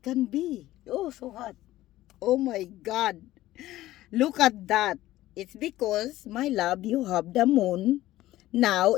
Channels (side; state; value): right; quieter; 15.6 dB